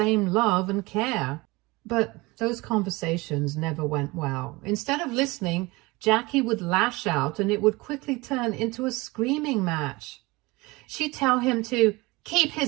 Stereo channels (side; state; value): left; quieter; 23.1 dB